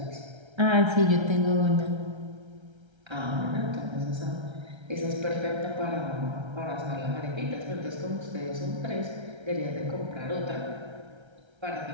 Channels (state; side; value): late; left; 1.3 ms